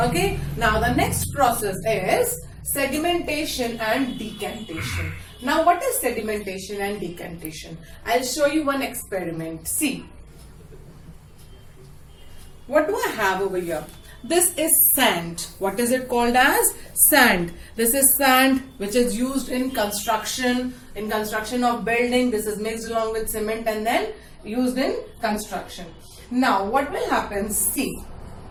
now the next process is sedimentation and decantation. Now what is sedimentation and decantation? I'll show you one experiment. See, what do I have over here? This is sand. What is it called as? Sand. This is sand which is used in construction of building. This is mixed along with cement and then used in construction. Now what will happen? See,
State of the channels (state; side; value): identical; both; correlation 1.00